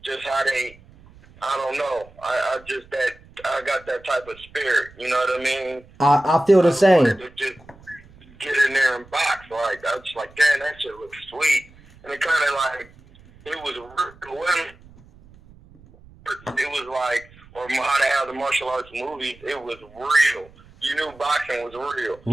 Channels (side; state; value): right; noise; rumble, 24 dB below the sound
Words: Just how I don't know. I got that type of spirit. You know what I mean? I feel the same. To just get in there and box. Like I was like, damn, that shit looks sweet, and it kind of like it was like, or how they have the martial arts movies. It was real. You knew boxing was real.